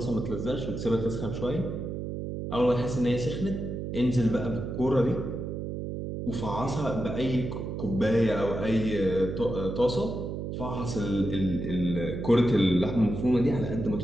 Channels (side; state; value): right; noise; hum, 5 dB below the sound